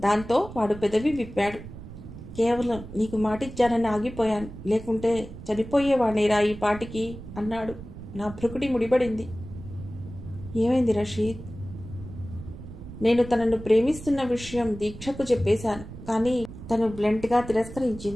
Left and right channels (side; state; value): right; noise; rumble, 13 dB below the sound